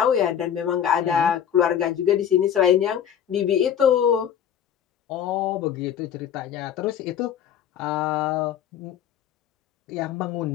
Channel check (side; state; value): right; quieter; 9.3 dB